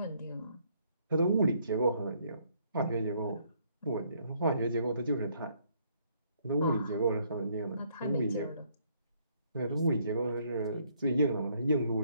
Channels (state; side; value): inverted; both; correlation -0.68